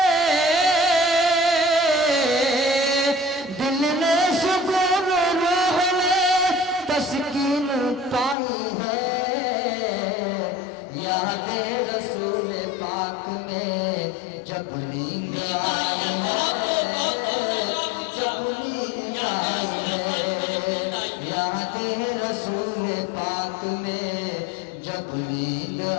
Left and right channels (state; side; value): drops out; right; at 8.3 s